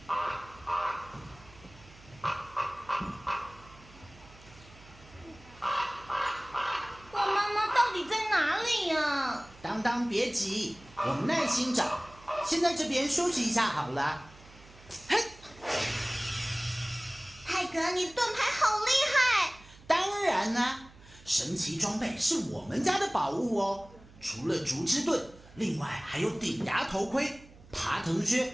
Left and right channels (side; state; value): right; noise; hum, 22 dB below the sound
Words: 当当别急，我们耐心找。先在这边休息一下好了。嘿，泰格，你的盾牌好厉害！当然啦，神奇装备是我们家的宝物哦。除了竹枝盾，另外还有顶牙头盔、爬藤靴、